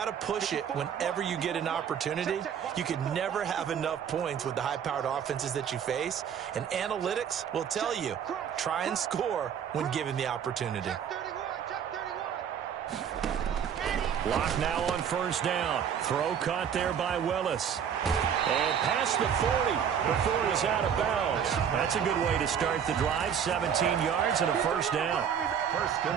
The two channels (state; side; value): quieter; left; 8.1 dB